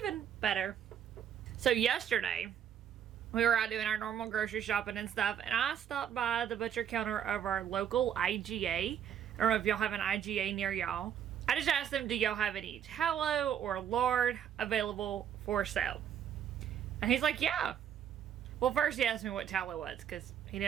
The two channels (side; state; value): left; quieter; 9.2 dB